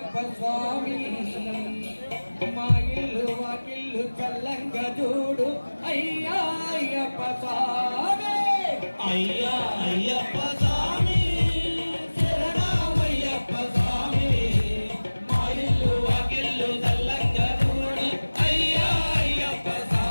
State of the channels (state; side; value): inverted; both; correlation -1.00